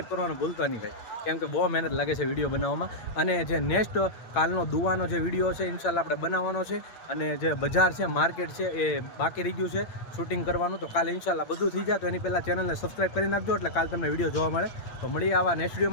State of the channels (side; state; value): right; late; 8.8 ms